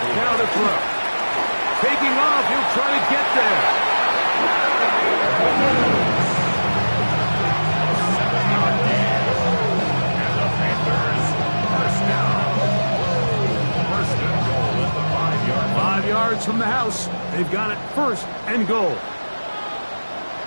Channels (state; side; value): inverted; both; correlation -1.00